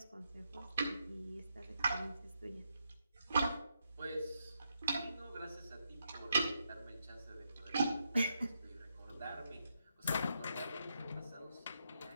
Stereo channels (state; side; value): inverted; both; correlation -0.81